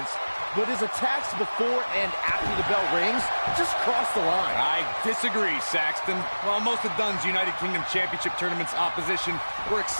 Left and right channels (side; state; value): both; inverted; correlation -1.00